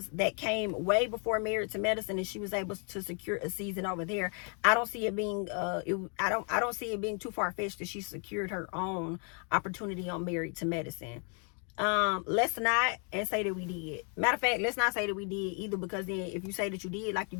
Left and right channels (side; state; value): right; quieter; 39.6 dB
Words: that came way before Married to Medicine and she was able to secure a season over there, I don't see it being I don't see it being too far-fetched that she secured her own opportunity on Married to Medicine. Let's not and say that we did. Matter of fact, let's not say that we did either, because then if you say that you did like you